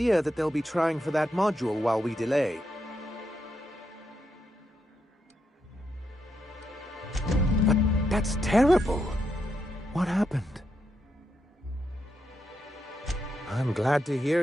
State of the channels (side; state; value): both; normal; correlation 0.82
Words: that they'll be trying for that module while we delay. But that's terrible. What happened? I'm glad to hear